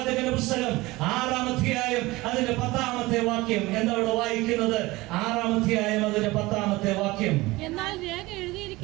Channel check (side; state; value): left; quieter; 20.6 dB